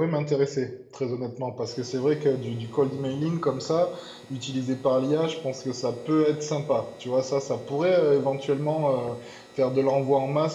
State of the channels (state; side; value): identical; both; correlation 1.00